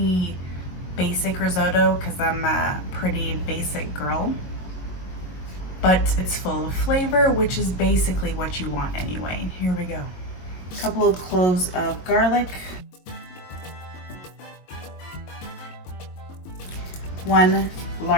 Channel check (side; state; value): right; late; 22 ms